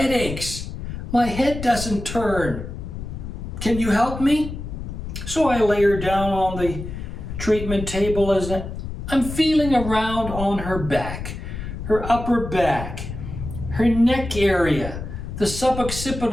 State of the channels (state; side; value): noise; left; rumble, 8 dB below the sound